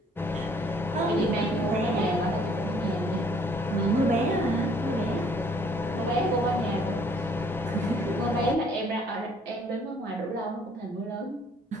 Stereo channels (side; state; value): both; normal; correlation 0.60